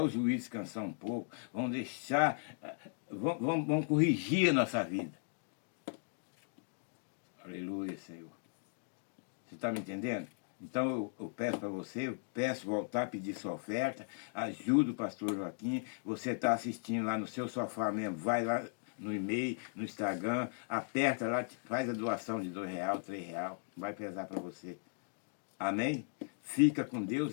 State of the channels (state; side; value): silent; right; digital silence